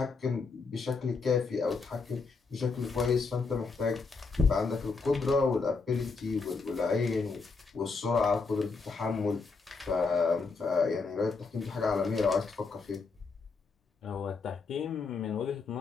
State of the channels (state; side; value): quieter; right; 4.4 dB